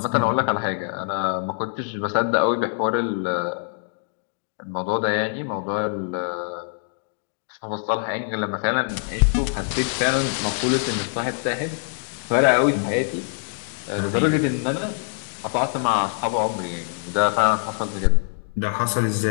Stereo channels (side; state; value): right; silent; digital silence